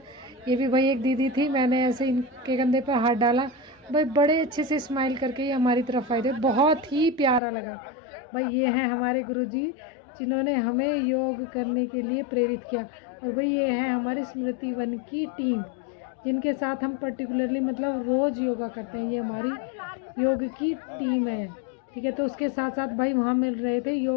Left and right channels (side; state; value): right; drops out; at 7.4 s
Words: ये भी भाई एक दीदी थी, मैंने ऐसे इनके कंधे पर हाथ डाला, भाई बड़े अच्छे से स्माइल करके ये हमारी तरफ आए थे, बहुत ही प्यारा लगा। भाई ये हैं हमारे गुरुजी जिन्होंने हमें योग करने के लिए प्रेरित किया। और भाई ये है हमारी स्मृति वन की टीम, जिनके साथ हम पर्टिकुलरली मतलब रोज़ योगा करते हैं। ये हमारी योग की टीम है, ठीक है। तो उसके साथ साथ भाई वहाँ मिल रहे थे